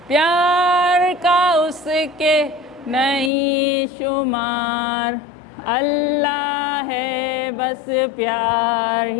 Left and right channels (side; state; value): right; drops out; at 3.3 s